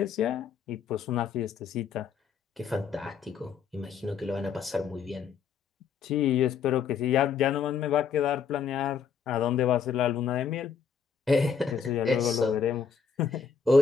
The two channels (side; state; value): right; quieter; 6.4 dB